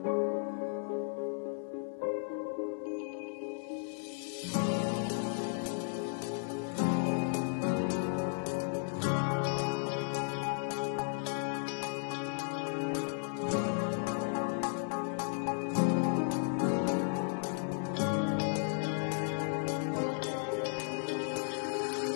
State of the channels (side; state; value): right; silent; 55 dB below the other